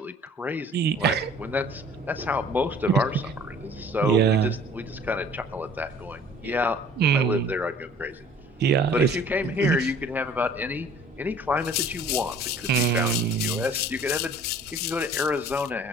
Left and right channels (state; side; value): normal; both; correlation 0.50